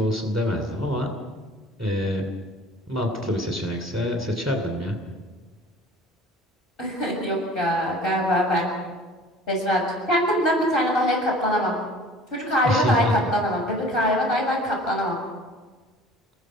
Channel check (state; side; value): normal; both; correlation 0.47